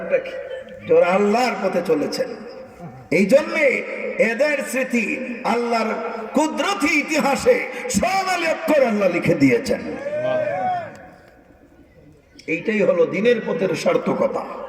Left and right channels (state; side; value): identical; both; correlation 1.00